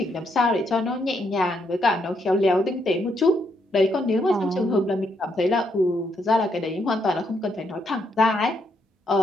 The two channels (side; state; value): both; normal; correlation 0.76